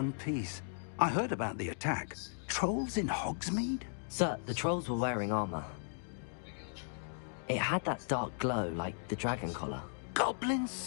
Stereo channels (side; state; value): right; silent; digital silence